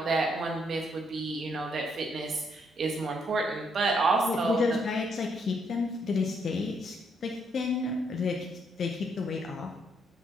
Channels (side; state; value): both; normal; correlation 0.73